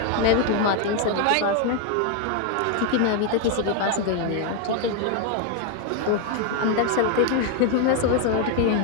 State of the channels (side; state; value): both; different; correlation 0.01